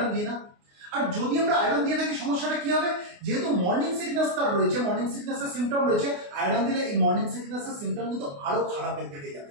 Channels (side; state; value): left; late; 28 ms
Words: দিই না। আর যদি আমরা আয়রন দিয়ে থাকি সমস্যাটা কি হবে, যেহেতু মর্নিং সিকনেস তার রয়েছে, মর্নিং সিকনেসের সিমটম রয়েছে, আয়রন দিলে এই মর্নিং সিকনেসের সিমটম কিন্তু আরো খারাপের দিকে